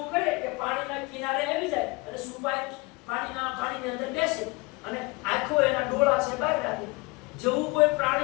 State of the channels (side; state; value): right; quieter; 25.9 dB